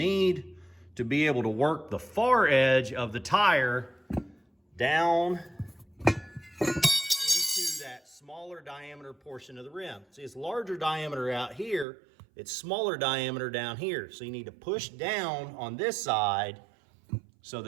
to be able to work the far edge of the tire down into that smaller diameter portion of the rim. See, it's larger diameter out here, it's smaller diameter down here. So you need to push down on this side so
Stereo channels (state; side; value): drops out; left; at 11.9 s